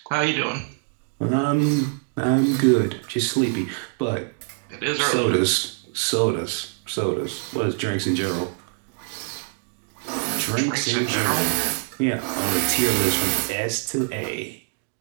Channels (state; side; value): silent; left; 58 dB below the other